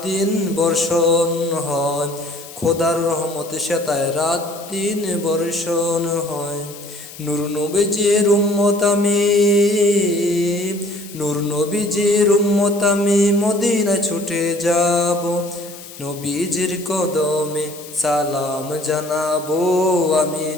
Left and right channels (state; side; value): noise; left; hiss, 17 dB below the sound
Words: দিন বর্ষণ হয়, খোদার রহমতে সেতায় রাত দিন বর্ষণ হয়। নূর নবীজির উম্মত আমি, নূর নবীজির উম্মত আমি মদিনায় ছুটে যাব, নবীজির কদমে সালাম জানাবো, আমি